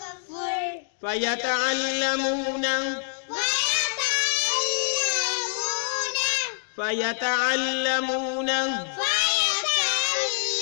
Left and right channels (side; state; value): right; silent; digital silence